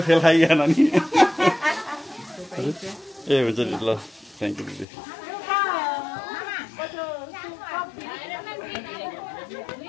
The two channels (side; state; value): right; drops out; at 4.9 s